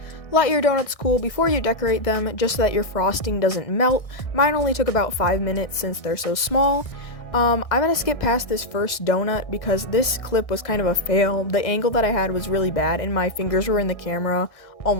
Let your donuts cool before you decorate them, just so that your frosting doesn't melt. Mine only took about 5 minutes since they're so small. I'm gonna skip past this first donut because this clip was kind of a fail. The angle that I had was really bad and my fingers were in the camera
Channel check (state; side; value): late; right; 1.6 ms